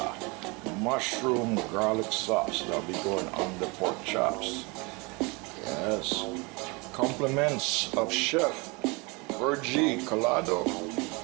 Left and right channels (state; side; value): quieter; left; 28.1 dB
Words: mushroom garlic sauce that'll be going on the pork chops. Yes. Compliments of Chef Virgie Colada